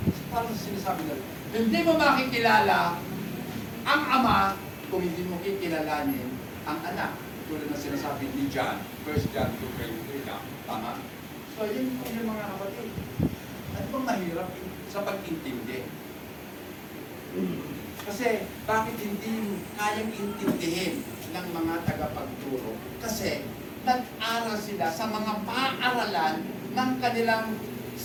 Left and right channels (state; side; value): identical; both; correlation 1.00